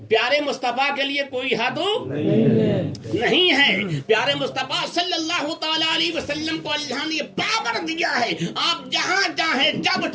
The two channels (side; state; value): both; identical; correlation 1.00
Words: پیارے مصطفیٰ کے لیے کوئی حد نہیں ہے. پیارے مصطفیٰ صلی اللہ تعالی علیہ وسلم کو اللہ نے پاور دیا ہے, آپ جہاں چاہیں جب